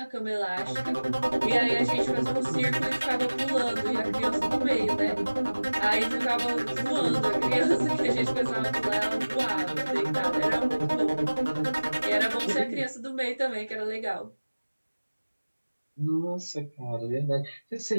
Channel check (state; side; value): inverted; both; correlation -1.00